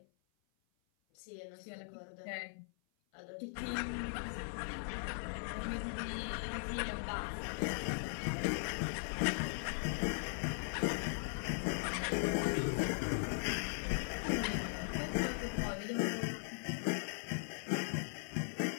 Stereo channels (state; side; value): silent; right; 52 dB below the other